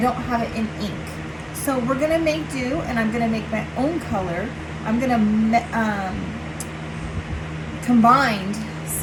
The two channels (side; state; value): both; identical; correlation 1.00